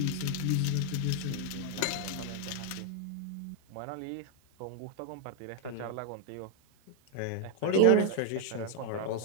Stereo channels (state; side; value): different; both; correlation 0.00